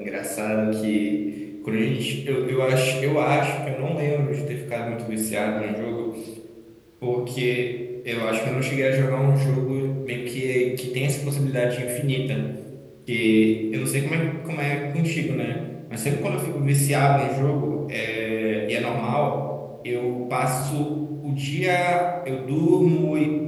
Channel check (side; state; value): both; identical; correlation 1.00